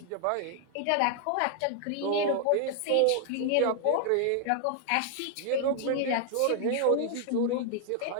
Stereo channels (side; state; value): both; different; correlation 0.00